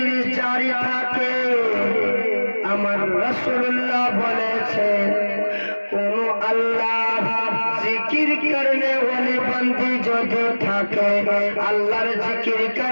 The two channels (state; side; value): inverted; both; correlation -1.00